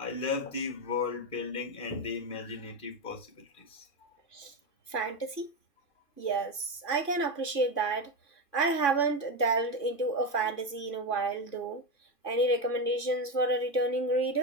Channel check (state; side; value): late; right; 2.5 ms